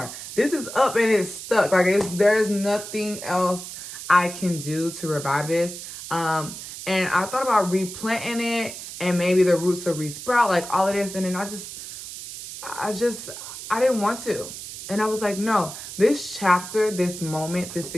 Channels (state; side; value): noise; right; hiss, 10 dB below the sound